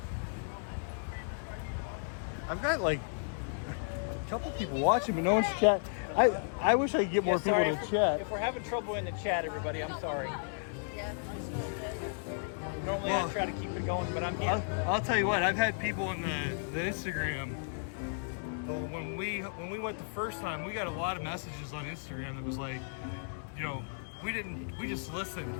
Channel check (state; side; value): silent; right; digital silence